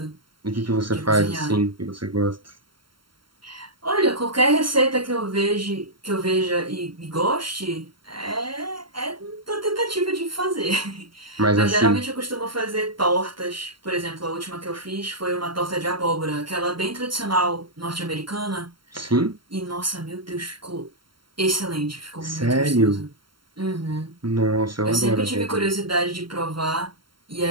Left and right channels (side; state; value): left; late; 0.73 ms